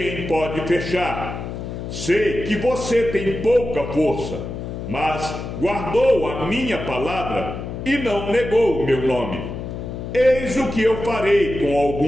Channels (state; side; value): noise; left; hum, 7 dB below the sound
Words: pode fechar. Sei que você tem pouca força, mas guardou a minha palavra e não negou o meu nome. Eis o que eu farei com